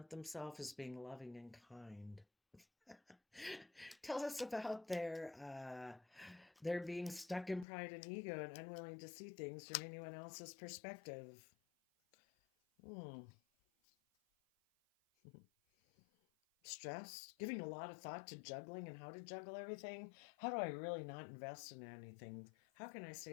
themselves as being loving and kind. Tell us about their being stuck in pride and ego and unwilling to see things from anyone else's perspective. Hmm. Stress, giving a lot of thought to juggling and how to juggle everything. How do I really not invest in anything? How can I stay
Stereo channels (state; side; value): drops out; right; at 7.7 s